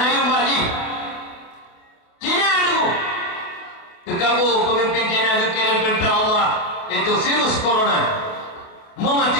yumbal haji. China dulu kekabur pemimpin China kekirim tentera Allah itu virus corona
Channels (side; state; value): right; late; 28 ms